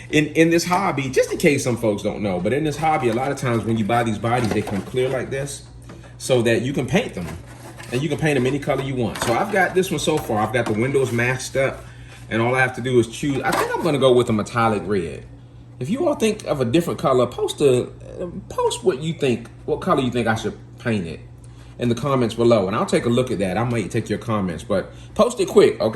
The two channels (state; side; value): identical; both; correlation 1.00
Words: In this hobby, just in case some folks don't know, but in this hobby, a lot of times when you buy these bodies, they come clear like this so that you can paint them. And you can paint them any color you want. So I've got this one so far. I've got the windows masked up, and all I have to do is choose. I think I'm gonna go with a metallic red. If you all think of a different color, post what you think, what color you think I should paint it in the comments below, and I'll take a look at that. I might take your comments, but post it quick,